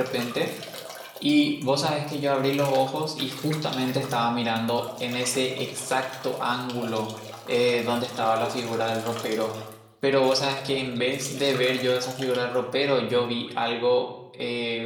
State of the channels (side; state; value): both; identical; correlation 1.00